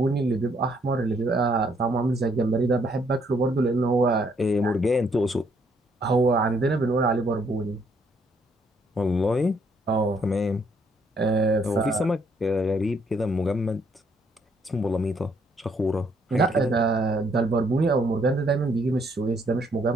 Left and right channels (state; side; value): normal; both; correlation 0.69